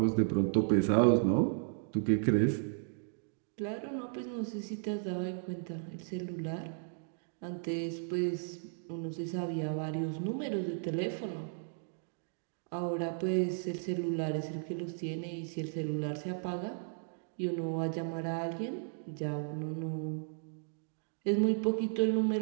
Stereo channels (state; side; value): silent; left; digital silence